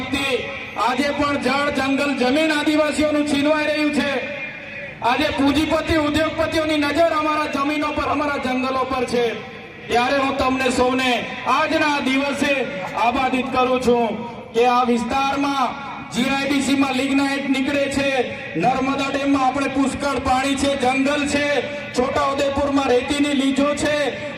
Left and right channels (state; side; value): identical; both; correlation 1.00